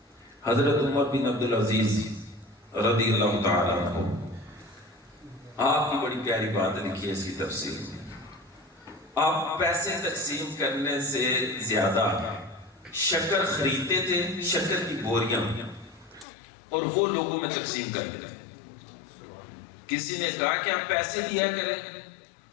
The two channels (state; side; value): drops out; right; at 16.2 s